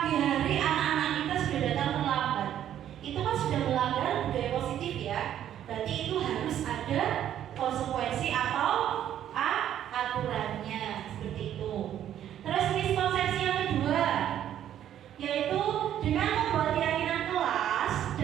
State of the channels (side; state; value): left; quieter; 10.8 dB